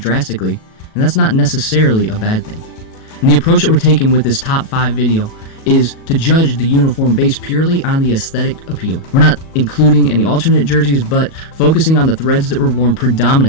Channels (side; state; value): right; late; 37 ms